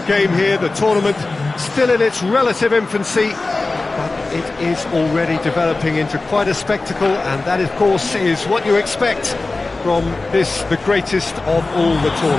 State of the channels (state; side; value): quieter; right; 3.4 dB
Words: game here. The tournament still in its relative infancy, but it is already developing into quite a spectacle, and that, of course, is what you expect from this, the greatest of all the